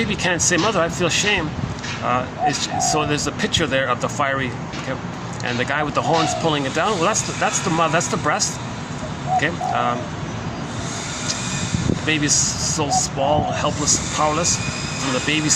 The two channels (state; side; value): identical; both; correlation 1.00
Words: can't say, "Mother, I feel shame." So there's a picture there of the fiery, okay, and the guy with the horns pulling it down. Well, that's the mother, that's the breast. Okay. The baby's so small, helpless, powerless. From the